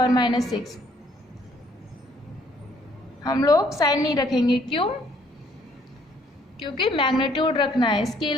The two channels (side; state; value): both; normal; correlation 0.64